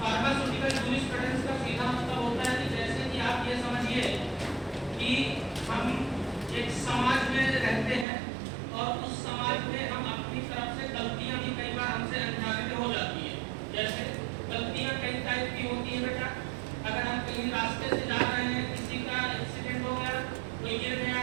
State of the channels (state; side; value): drops out; left; at 8.1 s